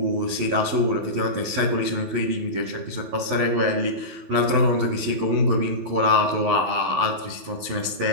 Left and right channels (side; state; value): left; late; 12 ms